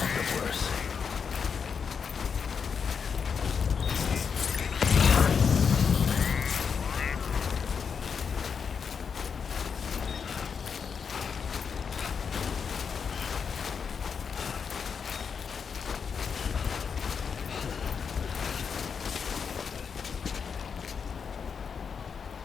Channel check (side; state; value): right; quieter; 6.3 dB